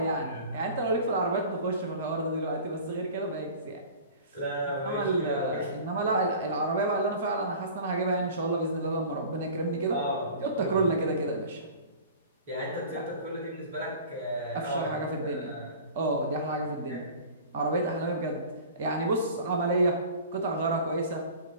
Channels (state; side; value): inverted; both; correlation -0.41